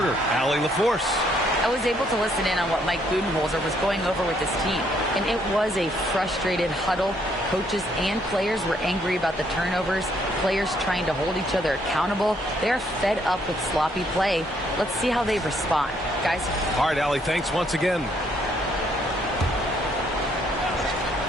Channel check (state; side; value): normal; both; correlation 0.69